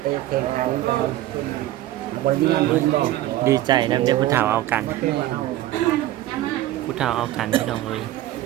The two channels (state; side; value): quieter; left; 14.7 dB